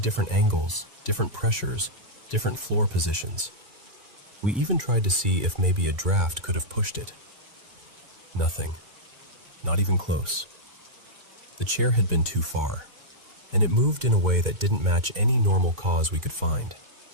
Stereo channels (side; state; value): both; normal; correlation -0.09